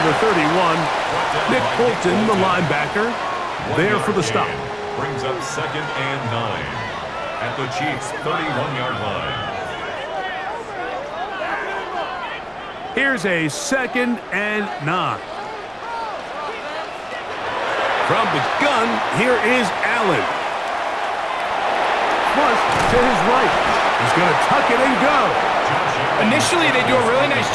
the 31. Nick Bolton, the linebacker, there for the stop. Brings up second and 9 at the Chiefs' 31-yard line. Here's a second and 9. From the gun, here is Allen. Flushed to his right. He's going to tuck it and go. Initially, they do a really nice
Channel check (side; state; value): both; identical; correlation 1.00